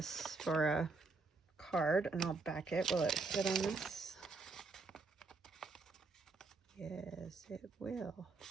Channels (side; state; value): left; quieter; 3.9 dB